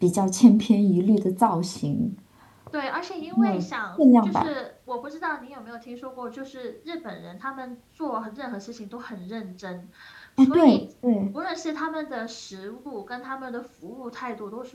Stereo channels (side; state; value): both; identical; correlation 1.00